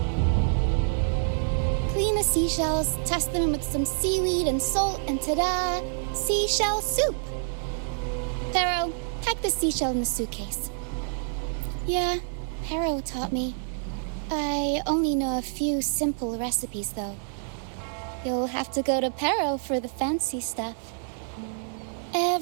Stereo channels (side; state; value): left; silent; digital silence